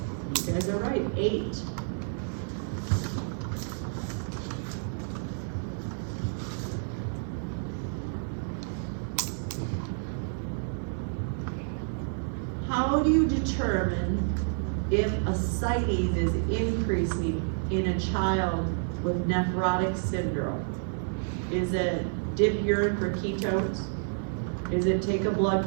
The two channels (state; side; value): silent; left; 58 dB below the other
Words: You guys are right, 8. How do you determine if ascites is increasing in a child with nephrotic syndrome? Is it dip urine for ketones? Is it take a